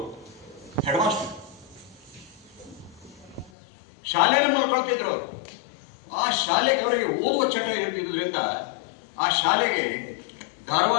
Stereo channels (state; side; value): drops out; right; at 3.5 s